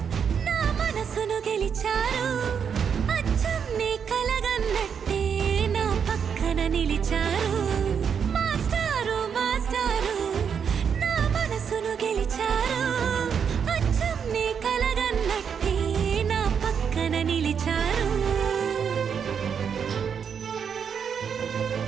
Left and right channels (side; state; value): left; quieter; 7.1 dB